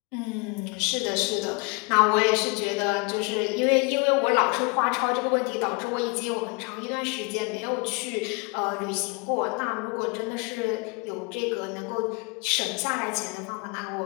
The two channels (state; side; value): quieter; right; 30.1 dB